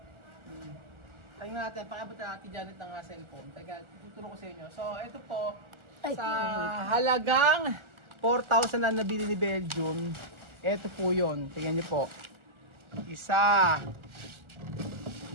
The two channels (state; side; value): late; left; 1.4 ms